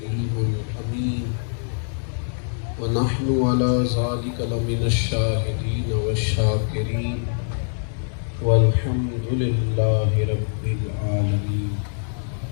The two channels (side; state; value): right; silent; digital silence